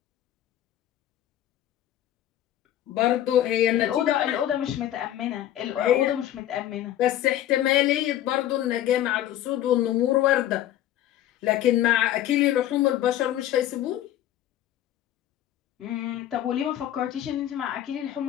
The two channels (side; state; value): right; quieter; 12.5 dB